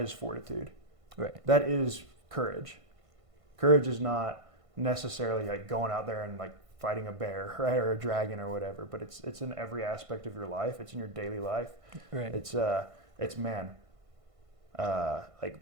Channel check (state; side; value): late; left; 1.5 ms